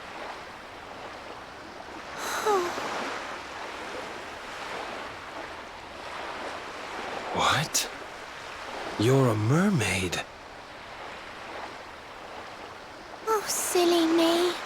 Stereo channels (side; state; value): both; identical; correlation 1.00